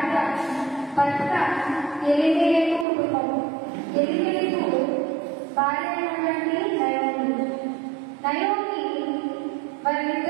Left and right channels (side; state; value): left; drops out; at 2.9 s